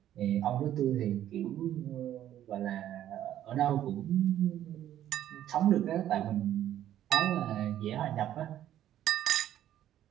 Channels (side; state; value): left; quieter; 11.8 dB